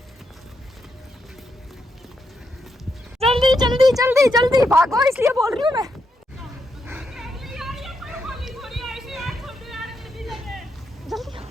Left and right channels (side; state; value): both; normal; correlation 0.81